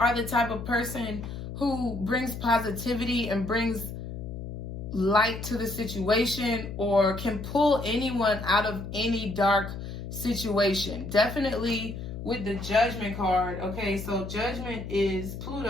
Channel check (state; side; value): noise; left; hum, 8 dB below the sound